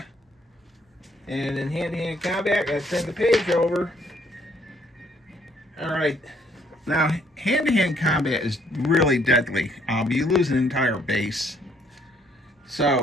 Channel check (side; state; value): both; normal; correlation 0.66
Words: And in hand-to-hand combat, I send the page over. All right. Now, hand-to-hand combat is really deadly. You lose an entire base.